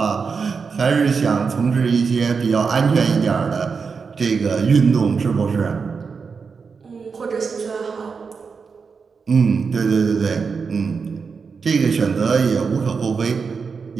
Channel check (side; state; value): left; quieter; 5.4 dB